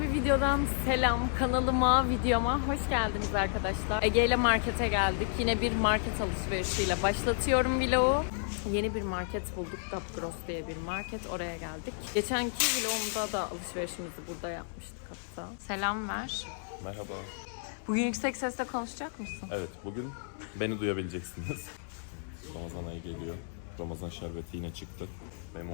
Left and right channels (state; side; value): silent; right; 56 dB below the other